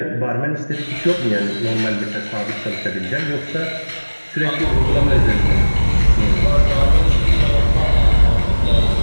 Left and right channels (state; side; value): inverted; both; correlation -1.00